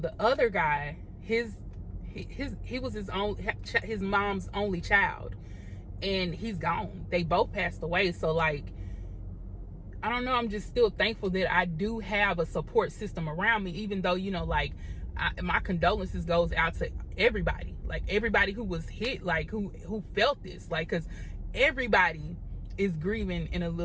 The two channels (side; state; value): both; identical; correlation 1.00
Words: other guy, he was his mom's only child, and he's gone. They both passed away. So like, I don't know, I'm just still thankful that I do have a support system around me, even though, you know, like my condolences goes out to everybody, like everybody who was hit, like who felt this, like, because everybody is grieving in a